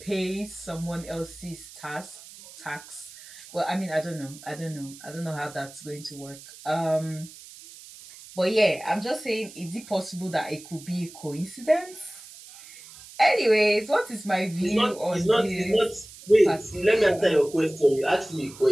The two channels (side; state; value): right; noise; hiss, 18 dB below the sound